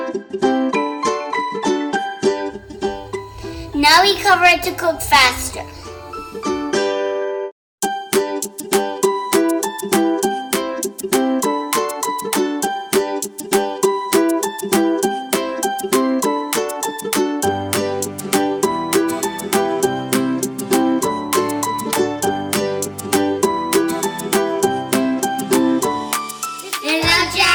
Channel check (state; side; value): identical; both; correlation 1.00